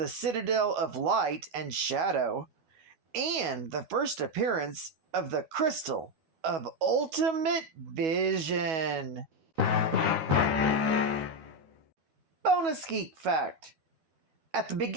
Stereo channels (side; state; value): left; late; 12 ms